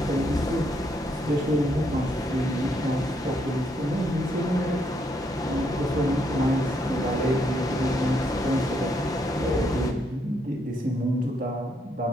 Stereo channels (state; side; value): normal; both; correlation 0.75